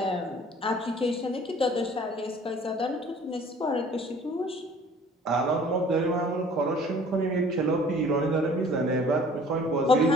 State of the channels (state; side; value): normal; both; correlation 0.51